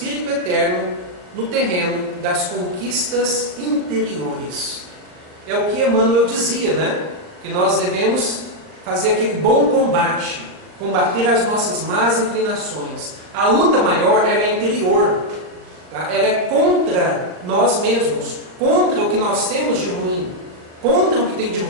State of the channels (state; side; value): late; left; 38 ms